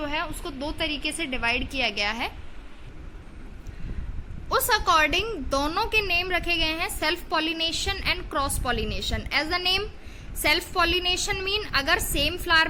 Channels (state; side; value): identical; both; correlation 1.00